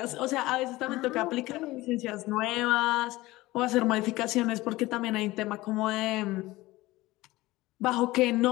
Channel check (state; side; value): quieter; right; 19.0 dB